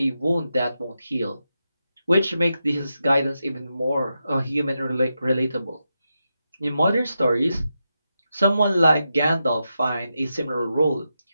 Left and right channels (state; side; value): inverted; both; correlation -0.88